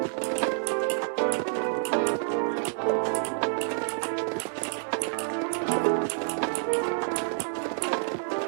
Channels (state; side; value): silent; left; digital silence